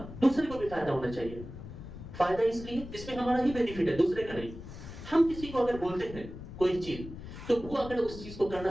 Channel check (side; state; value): left; noise; rumble, 12 dB below the sound